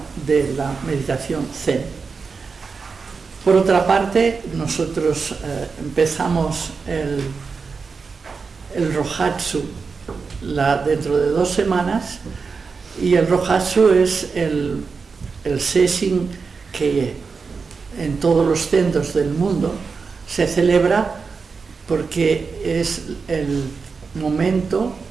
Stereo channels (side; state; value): left; quieter; 5.0 dB